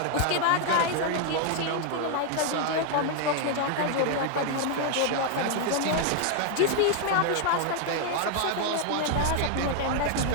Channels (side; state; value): both; different; correlation 0.00